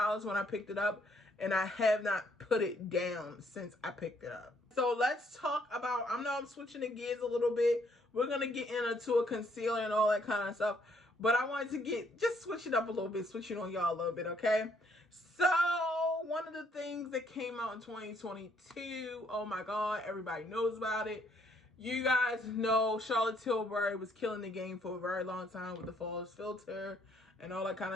when I picked it up, and I have not put it down since I picked it up. So let's talk about, I know I'm switching the gears a little bit. We're going to get into a concealer and all that kind of stuff. But I wanted to just switch it up a little bit, switch it on y'all a little bit, okay? So one of the things that came out in 2022, oh my God, everybody knows about it. You guys know Charlotte Tilbury was killing the game for a very long time with the Flawless filter and all that kind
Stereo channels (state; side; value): normal; both; correlation 0.68